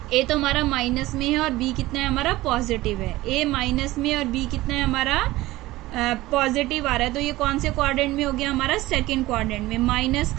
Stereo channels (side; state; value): left; quieter; 18.0 dB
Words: ए तो हमारा माइनस में है, और बी कितना है हमारा, पॉजिटिव है। ए माइनस में और बी कितना है हमारा, पॉजिटिव आ रहा है। तो ये कौन से क्वाड्रेंट में हो गया हमारा, सेकंड क्वाड्रेंट में। माइनस